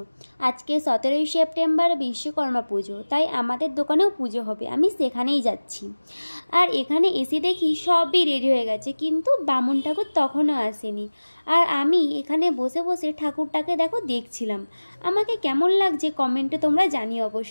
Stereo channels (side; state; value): both; inverted; correlation -1.00